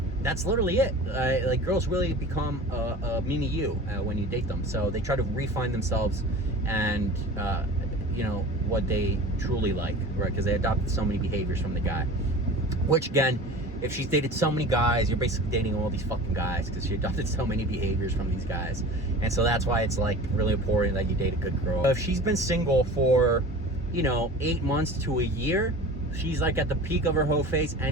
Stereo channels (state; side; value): normal; both; correlation 0.37